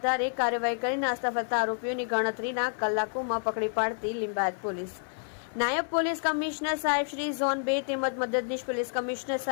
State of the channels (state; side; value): silent; right; 57 dB below the other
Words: કાર્યવાહી કરી નાસ્તા ફરતા આરોપીઓની ગણતરીના કલાકોમાં પકડી પાડતી લિંબાયત પોલીસ। નાયબ પોલીસ કમિશનર સાહેબ શ્રી ઝોન 2 તેમજ મદદનીશ પોલીસ કમિશનર